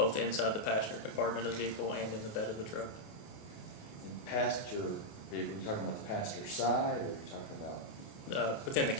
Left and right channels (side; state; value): right; late; 28 ms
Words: inside the passenger compartment of the vehicle and in the bed of the truck. The passenger vehicle, you talking about the passenger side, or are you talking about? Within the